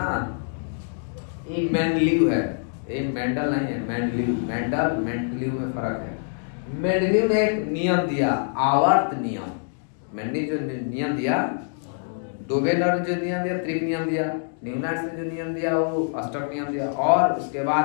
ये मेंडलीव है, ये मेंडल नहीं है। मेंडलीव, मेंडल मेंडलीव में फर्क है। मेंडलीव ने एक नियम दिया, आवर्त नियम। मेंडलीव जो नियम दिया, डोबेलर ने जो नियम दिया, त्रिक नियम दिया, न्यूलैंड्स ने जो नियम दिया वो अष्टक नियम दिया, और उसके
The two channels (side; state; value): right; silent; digital silence